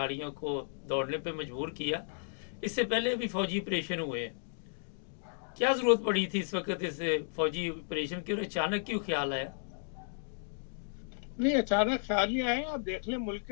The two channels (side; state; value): right; silent; digital silence